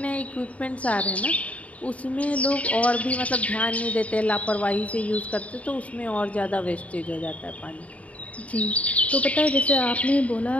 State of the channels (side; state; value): right; late; 0.067 ms